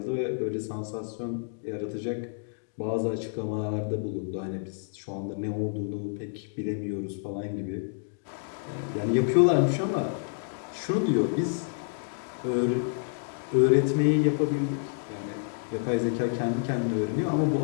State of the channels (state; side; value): silent; right; digital silence